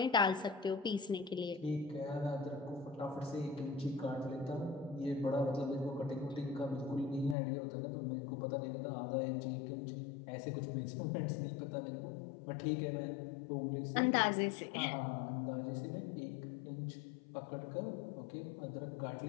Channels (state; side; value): drops out; right; at 7.4 s